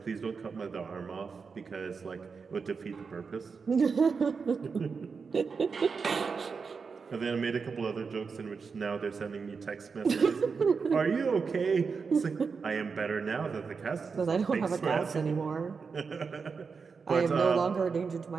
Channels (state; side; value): quieter; left; 5.3 dB